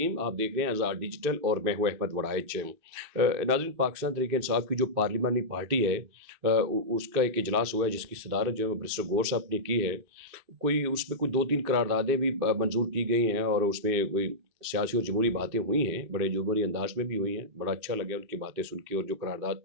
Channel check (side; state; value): left; late; 2.6 ms